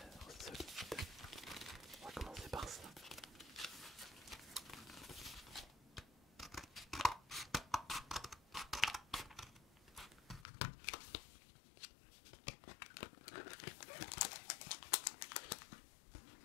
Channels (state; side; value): drops out; right; at 10.5 s